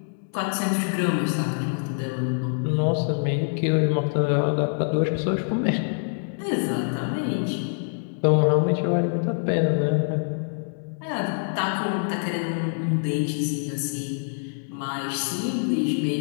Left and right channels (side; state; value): right; silent; digital silence